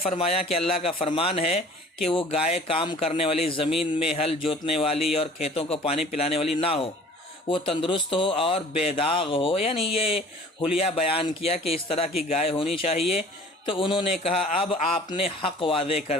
کہ اللہ کا فرمان ہے کہ وہ گائے کام کرنے والی، زمین میں ہل جوتنے والی اور کھیتوں کو پانی پلانے والی نہ ہو، وہ تندرست ہو اور بے داغ ہو، یعنی یہ حلیہ بیان کیا کہ اس طرح کی گائے ہونی چاہیے۔ تو انہوں نے کہا اب آپ نے حق واضح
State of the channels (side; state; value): both; normal; correlation 0.48